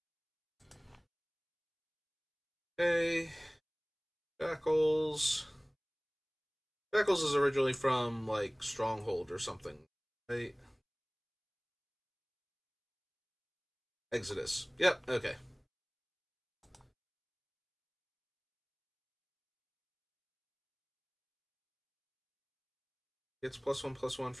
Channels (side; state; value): both; identical; correlation 1.00